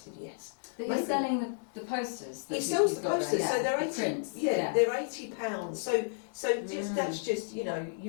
"Yes." But he's selling the posters. He sells the posters, there, so they're the 80. prints. They're £80. So that's just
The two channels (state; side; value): silent; right; digital silence